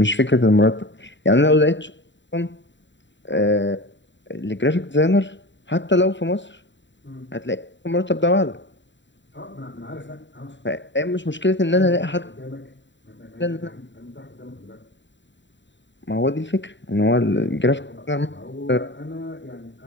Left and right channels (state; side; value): late; right; 0.53 ms